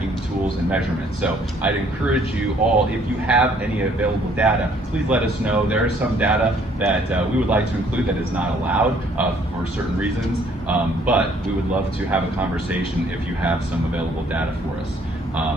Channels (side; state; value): both; normal; correlation 0.62